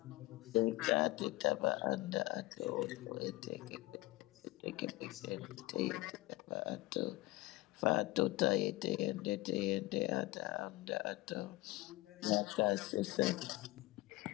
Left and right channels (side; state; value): right; quieter; 19.9 dB